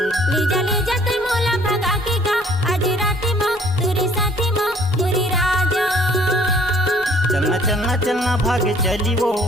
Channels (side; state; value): both; normal; correlation 0.57